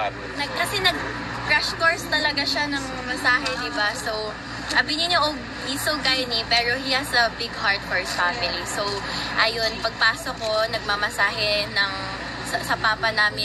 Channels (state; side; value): identical; both; correlation 1.00